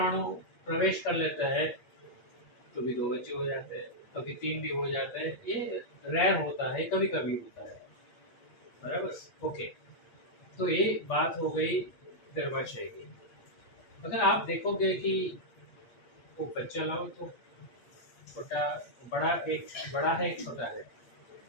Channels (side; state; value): right; late; 8.4 ms